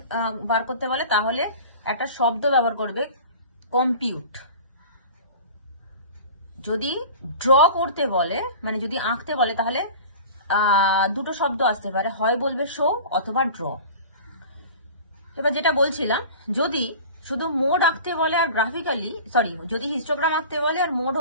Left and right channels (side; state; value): both; inverted; correlation -0.39